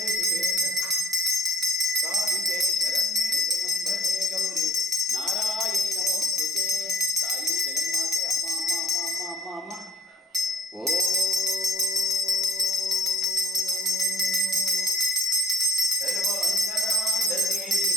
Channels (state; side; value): normal; both; correlation 0.57